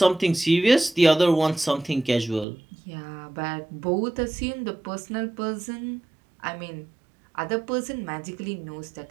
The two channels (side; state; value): left; drops out; at 2.5 s